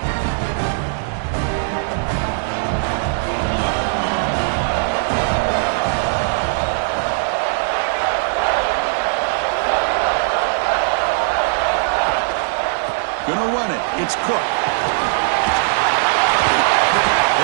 Gonna run it. It's Cook.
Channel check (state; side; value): silent; left; 62 dB below the other